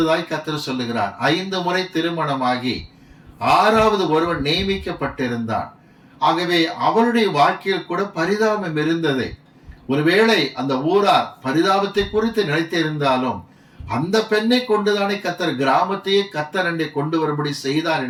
கர்த்தர் சொல்லுகிறார். 5 முறை திருமணமாகி 6வது ஒருவன் நியமிக்கப்பட்டிருந்தான். ஆகவே அவளுடைய வாழ்க்கையில் கூட பரிதாபம் இருந்தது. ஒருவேளை அந்த ஊரார் பரிதாபத்தை குறித்து நினைத்திருந்தாலும் அந்த பெண்ணை கொண்டுதானே கர்த்தர் கிராமத்தையே கர்த்தர் அண்டை கொண்டு வரும்படி செய்தார்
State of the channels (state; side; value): identical; both; correlation 1.00